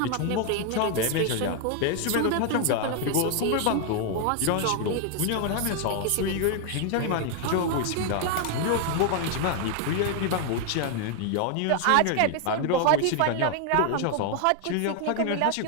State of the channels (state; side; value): different; both; correlation 0.00